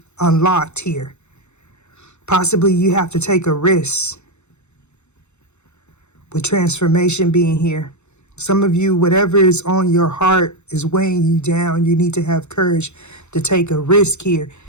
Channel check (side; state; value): right; late; 0.82 ms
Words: unlocked here. Possibly you have to take a risk with transformation being here. Some of you, whatever is on your heart is weighing you down. You need to have courage to take a risk here